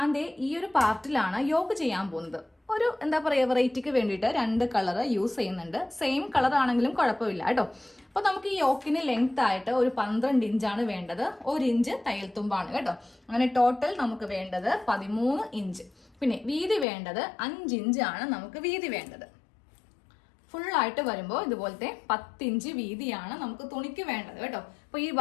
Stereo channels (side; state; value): right; drops out; at 16.9 s